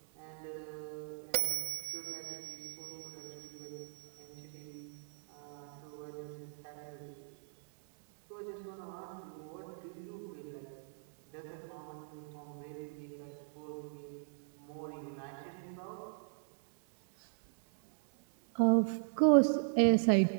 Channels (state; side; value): silent; left; 53 dB below the other